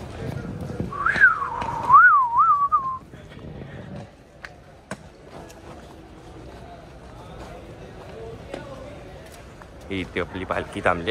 इथे आपली पालखी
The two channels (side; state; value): both; identical; correlation 1.00